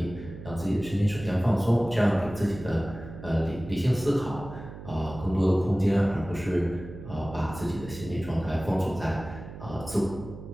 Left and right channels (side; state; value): right; noise; hum, 13 dB below the sound